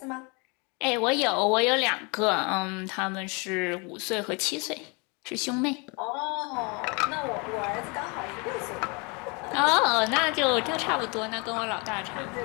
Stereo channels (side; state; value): right; quieter; 31.0 dB